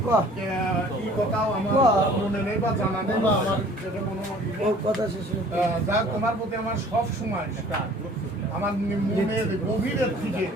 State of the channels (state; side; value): normal; both; correlation 0.51